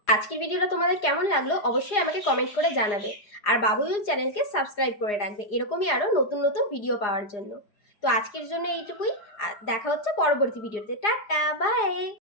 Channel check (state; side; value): late; right; 4.9 ms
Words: আজকের ভিডিওটা তোমাদের কেমন লাগলো অবশ্যই আমাকে কমেন্ট করে জানাবে। আর বাবুল চ্যানেলকে সাবস্ক্রাইব করে রাখবে এরকমই আরও নতুন নতুন ভিডিও পাওয়ার জন্য। তো আজকের জন্য এইটুকুই। দেখা হচ্ছে পরবর্তী ভিডিওতে। Tata, by.